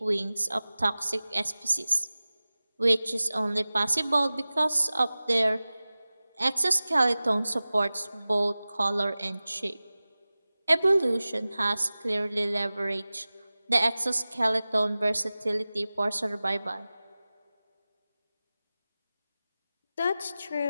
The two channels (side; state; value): both; inverted; correlation -0.97